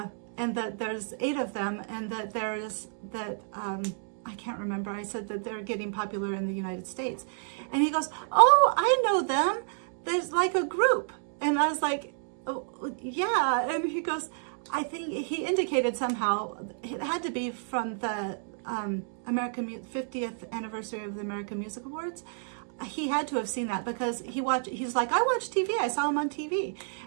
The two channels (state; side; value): silent; left; digital silence